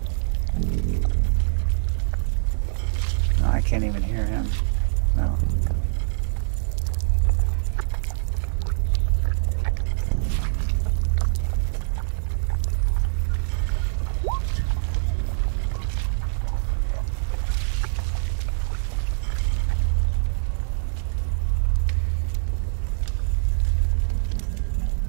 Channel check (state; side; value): silent; left; 63 dB below the other